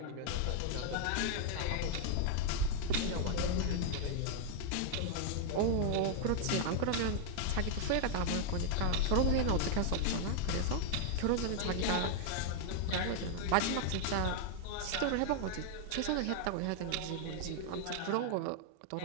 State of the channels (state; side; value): different; both; correlation 0.00